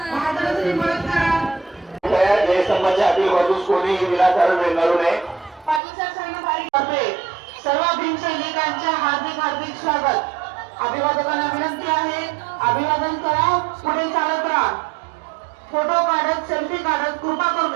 जयस्तंभाच्या आतील बाजूस कोणीही विनाकारण रेंगाळू नये. सर्व भीमसैनिकांचे हार्दिक हार्दिक स्वागत. अभिवादकांना विनंती आहे, अभिवादन करा, पुढे चालत राहा. फोटो काढत, सेल्फी काढत कृपा करून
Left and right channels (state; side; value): drops out; left; at 5.8 s